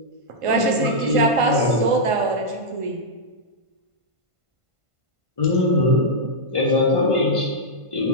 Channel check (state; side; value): late; left; 1.5 ms